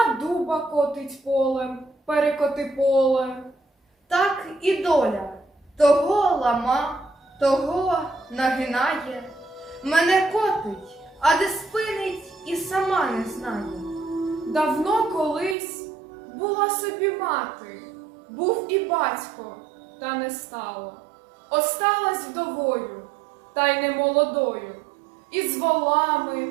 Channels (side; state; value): left; drops out; at 15.6 s